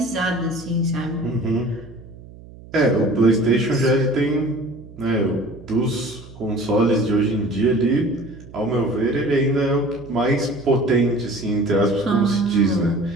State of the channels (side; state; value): right; noise; hum, 19 dB below the sound